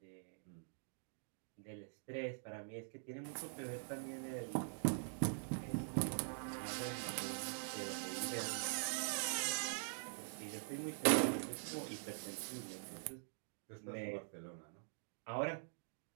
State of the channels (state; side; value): silent; left; digital silence